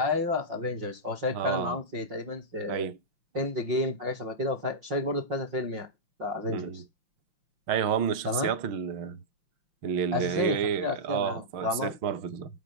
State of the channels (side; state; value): left; late; 5.7 ms